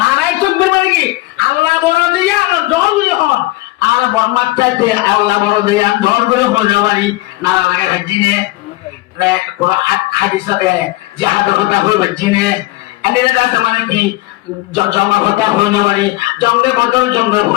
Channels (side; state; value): right; quieter; 19.4 dB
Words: চুক্তি মানে কি আল্লাহ বড় দিয়া আমার দল যখন আর বর্মার চাইতে আল্লাহ বড় দিয়া ধর করে হয়ে পারি না লাগে ভাজিনে কোন হাদিসে জিহাদের কথা হয়ে ভাজিনে এনে দাস মানে কি জঙ্গের কথা হয়ে না পারি জঙ্গের বদল জঙ্গের